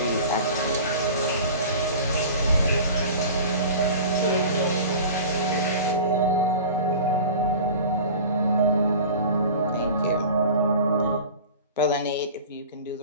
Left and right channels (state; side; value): inverted; both; correlation -0.38